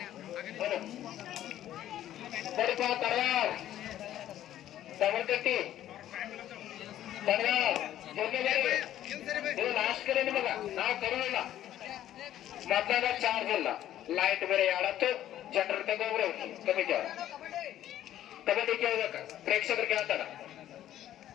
ತಮರ್ಕಟ್ಟಿ ಇದು ಲಾಸ್ಟ್ ಕರೆ ನಿಮಗ ನಾವು ಕರೋಲ್ಲ ಮೊದಲಾಗ ಚಾರ್ಜ್ ಇಲ್ಲ ಲೈಟ್ ಬೇರೆ ಯಾಳತ್ತು ಜನರ ತಗೋಬ್ರು ಕಮಿಟಿ ಅವ್ರ ಕಬಡ್ಡಿ ಕೇಳ್ಬೇಕ ಪ್ರೇಕ್ಷಕರು ಕೇಳ್ತಾರ.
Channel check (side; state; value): right; quieter; 12.4 dB